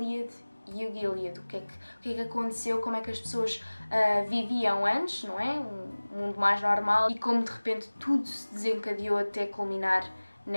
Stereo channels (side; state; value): both; inverted; correlation -1.00